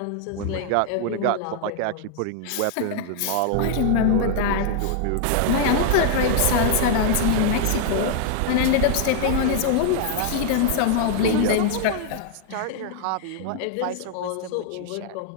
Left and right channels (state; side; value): different; both; correlation 0.00